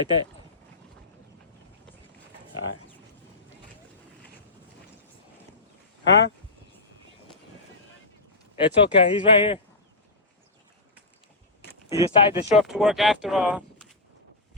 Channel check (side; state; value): right; quieter; 3.1 dB